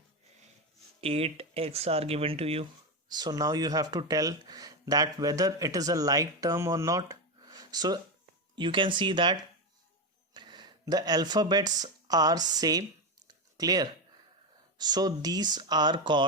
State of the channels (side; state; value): both; normal; correlation 0.12